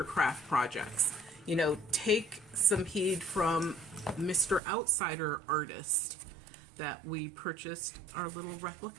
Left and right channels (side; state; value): left; drops out; at 4.6 s